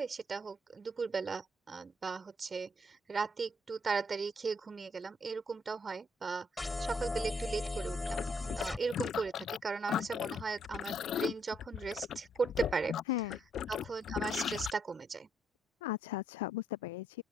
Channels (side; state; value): both; normal; correlation 0.73